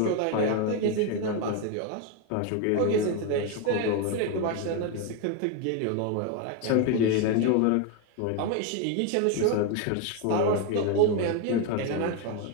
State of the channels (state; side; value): different; both; correlation 0.02